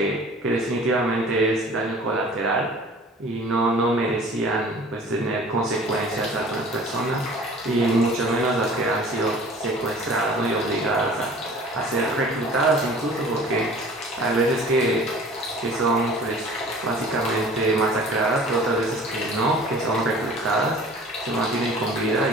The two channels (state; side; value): normal; both; correlation 0.46